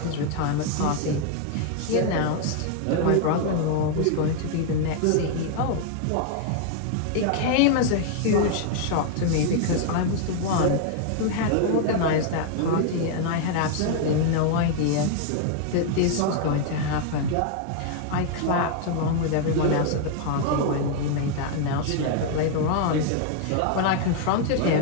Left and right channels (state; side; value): different; both; correlation 0.00